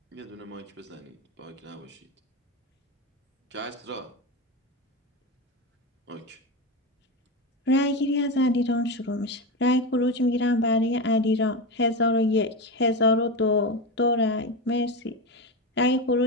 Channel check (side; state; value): both; normal; correlation 0.18